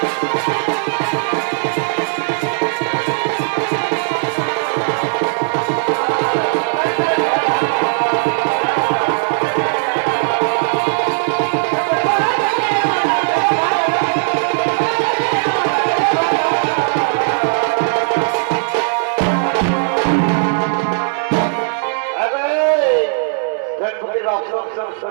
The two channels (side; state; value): left; silent; digital silence